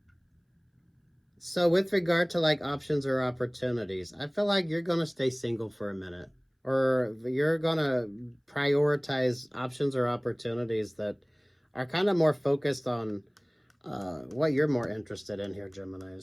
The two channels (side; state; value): both; identical; correlation 1.00